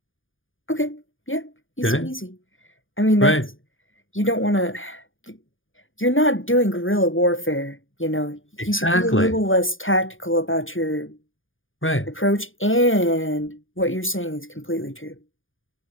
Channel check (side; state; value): right; late; 0.58 ms